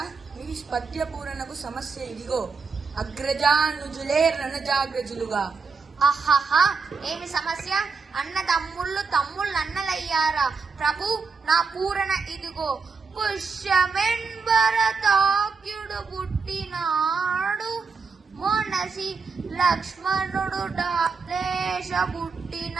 మీ పద్య పూరణకు సమస్య ఇదిగో: అగ్రజానుజులే రణజాగ్రజులుగా. ఆహాహా, ఏమి సమస్య? అన్న తమ్ముళ్ళు అన్నలయ్యారా? ప్రభు, నా పూరణ ఇదిగో: పుష్యమెంబరతాక్యుడు పుట్టినాడు, మొనసి లక్ష్మణుడు డాలేశ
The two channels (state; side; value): quieter; left; 4.9 dB